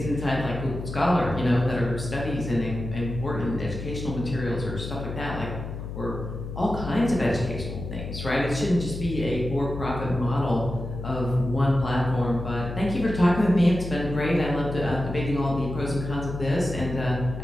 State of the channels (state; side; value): noise; left; hum, 8 dB below the sound